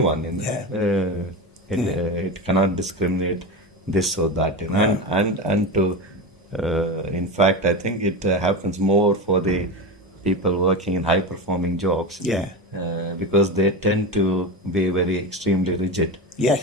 It cannot discriminate this or that. And to in fact, I think it happens more for the people working in high performing jobs. Because they tend to be very extremely rigid.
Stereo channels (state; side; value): normal; both; correlation 0.21